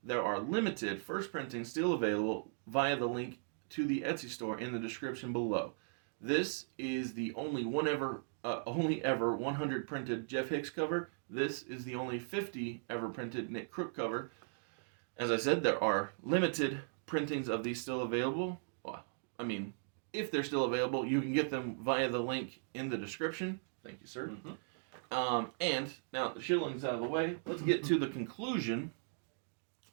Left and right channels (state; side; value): silent; left; digital silence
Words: There are limited first printings still available via the link to the Etsy store in the description below. This is the only ever 100 printed Jeff Hicks cover. This is the only 50 ever printed Nick Crook cover. As I said, there are limited printings of these still available. Well, I mean, if they're still available, you can get them via the link in the description. Thank you, sir. Mm-hmm. And now the shillings out of the way, let's get to the conclusion.